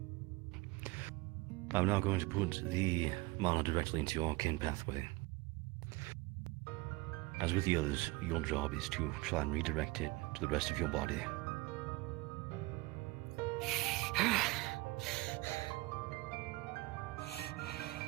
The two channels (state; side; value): quieter; left; 22.8 dB